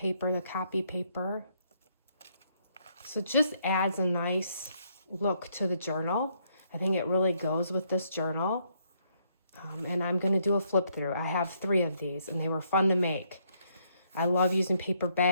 the copy paper. So it just adds a nice look to the journal. I think it really goes with this journal. And I'm going to do a flip through. I have 3 of these, and they were fun to make. I love using paper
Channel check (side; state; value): both; inverted; correlation -0.72